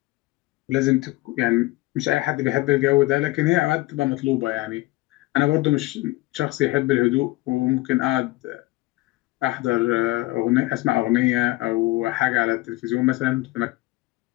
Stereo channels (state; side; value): quieter; right; 20.0 dB